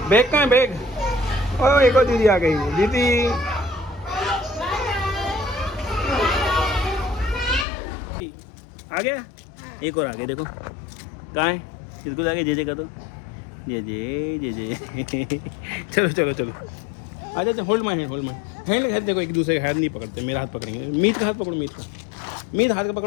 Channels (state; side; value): drops out; right; at 7.7 s